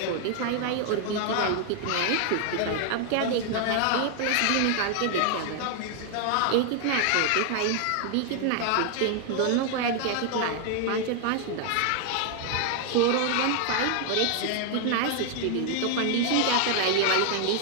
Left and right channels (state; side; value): different; both; correlation 0.00